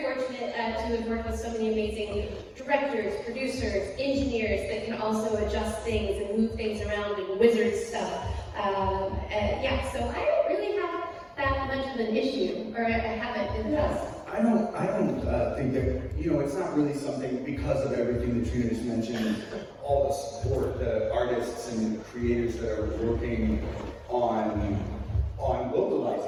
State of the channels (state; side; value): identical; both; correlation 1.00